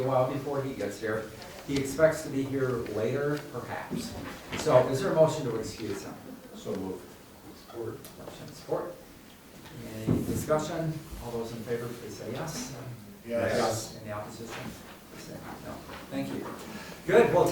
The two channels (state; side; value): identical; both; correlation 1.00